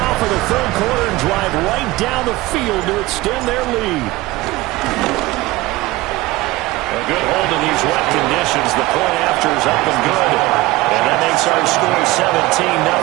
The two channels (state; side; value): quieter; left; 19.4 dB